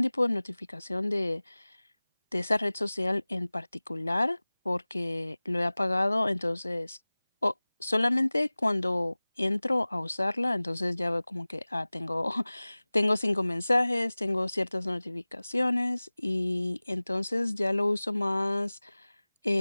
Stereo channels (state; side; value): inverted; both; correlation -0.99